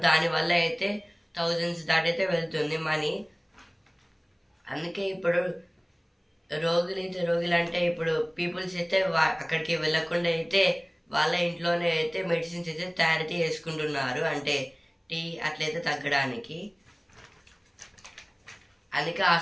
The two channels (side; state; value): both; identical; correlation 1.00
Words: దానివల్ల అయితే థౌజండ్స్ దాటైతే వెళ్తుంది మనీ. అందుకే ఇప్పుడు రోగులు అంటే ఇప్పుడు పీపుల్స్ అయితే అక్కడికి వెళ్ళకుండా అయితే వాళ్ళ ఇంట్లోనే అయితే మెడిసిన్స్ అయితే తయారైతే చేసుకుంటున్నారు. అంటే టీ అట్లయితే తగ్గడానికి. అందుకే